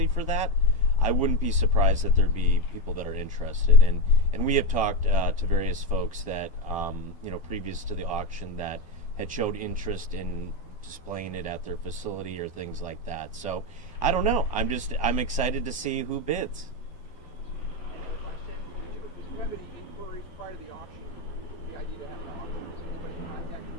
for that, I wouldn't be surprised that there'd be people that are interested. And we have talked to various folks that, previous to the auction, that had showed interest in displaying it at their facility or things like that. So I don't know. I'm excited to see who bids. Did you have any inquiries prior to the auction? The idea to have an auction, contact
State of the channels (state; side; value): late; right; 12 ms